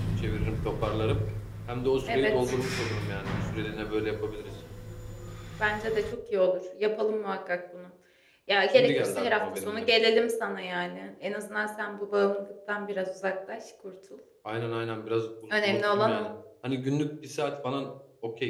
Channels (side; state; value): both; identical; correlation 1.00